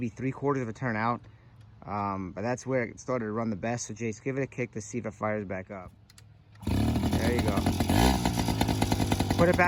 3/4 of a turn out, but that's where it started to run the best. So Jayce, give it a kick to see if it fires back up. There you go. Put it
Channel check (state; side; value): identical; both; correlation 1.00